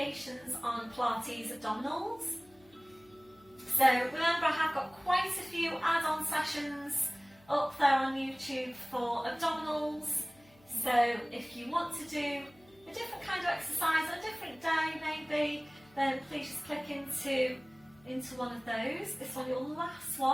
on Pilates abdominals. So remember, I have got quite a few add-on sessions up there on YouTube for abdominals. So if you want to do a different kind of exercise on a different day maybe, then please just click into one of those. This one, your last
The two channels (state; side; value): noise; left; hum, 28 dB below the sound